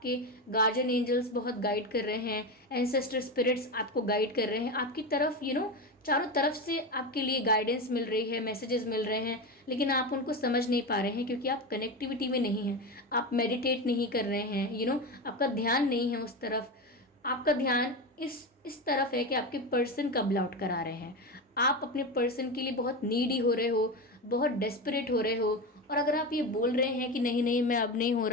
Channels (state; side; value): normal; both; correlation 0.19